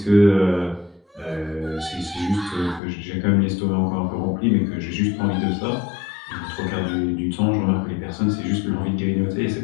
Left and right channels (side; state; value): right; drops out; at 2.8 s